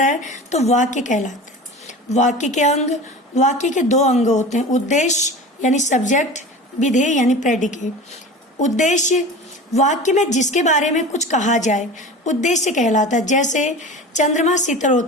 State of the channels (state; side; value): normal; both; correlation 0.34